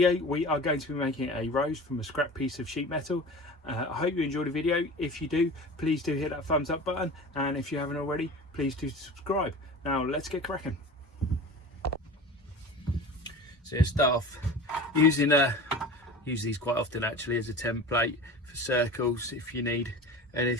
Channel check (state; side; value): normal; both; correlation 0.35